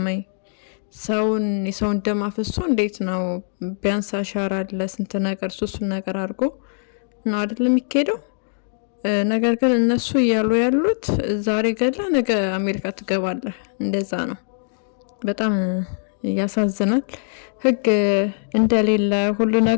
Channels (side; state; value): right; silent; digital silence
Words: ወይ? የሰውን ደም አፍሶ እንዴት ነው? ቢያንስ አሻራ አለ፣ ስንት ነገር ሱሱን ነገር አድርጎ ነው አይደል የሚካሄደው? ነገር ግን እነሱ እያሉ ያሉት ዛሬ ገላ ነገ አሜሪካ ትገባለህ፣ እንደዛ ነው። በጣም ያሳዝናል። ህግ እንደሌለ ሁሉ